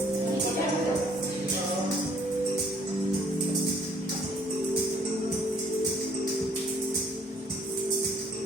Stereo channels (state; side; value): normal; both; correlation 0.61